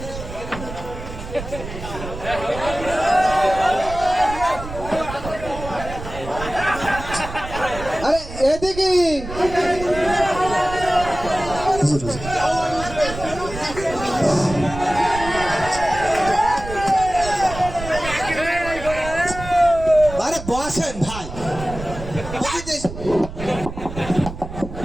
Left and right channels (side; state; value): right; noise; rumble, 10 dB below the sound